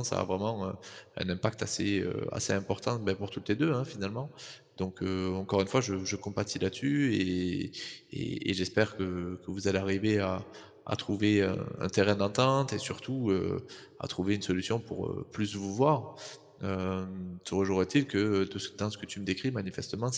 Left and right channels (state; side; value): identical; both; correlation 1.00